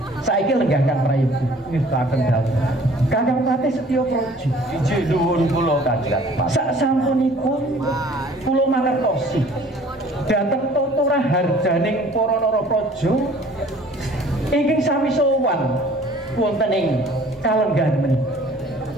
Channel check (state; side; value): normal; both; correlation 0.52